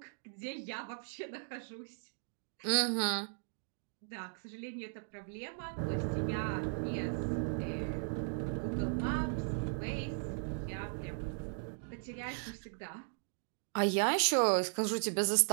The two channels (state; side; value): silent; left; digital silence